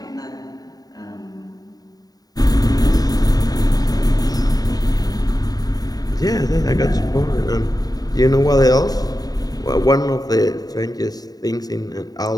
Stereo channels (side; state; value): right; late; 0.18 ms